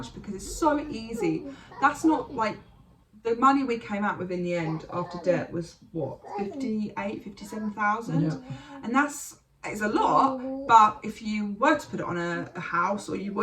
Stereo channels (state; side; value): identical; both; correlation 1.00